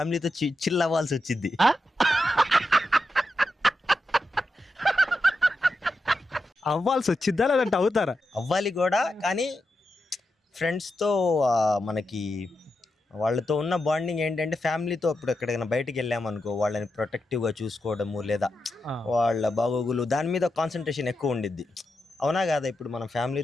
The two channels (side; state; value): both; normal; correlation 0.87